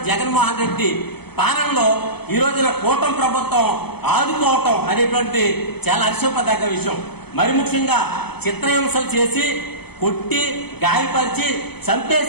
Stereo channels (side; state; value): right; late; 0.97 ms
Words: జగన్మోహన్ రెడ్డి పాలనలో ఈ రోజున కూటమి ప్రభుత్వం ఆదుకోవటం అనేటువంటి చాలా హర్షింపదగ్గ విషయం. మరి ముఖ్యంగా చిత్రహింసలు చేసి కొట్టి గాయపరిచి